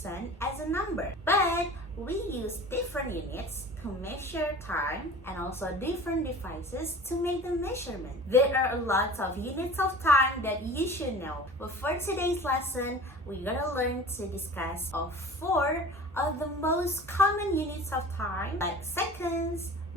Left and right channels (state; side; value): normal; both; correlation 0.40